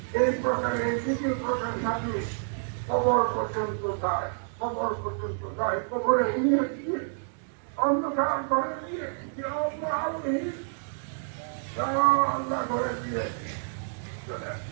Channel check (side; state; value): left; silent; digital silence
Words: এই প্রকারে এই দ্বিতীয় প্রকার জাতি কবর পর্যন্ত যায়, কবর পর্যন্ত যায়, কবরে নিয়ে গিয়ে অন্ধকার করে দিয়ে আল্লাহ করে দিয়ে